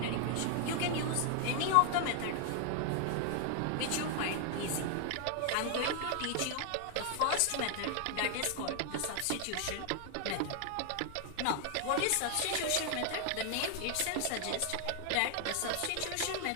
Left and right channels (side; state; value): both; different; correlation 0.00